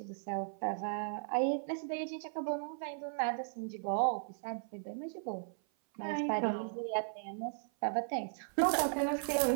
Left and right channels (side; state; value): left; silent; 53 dB below the other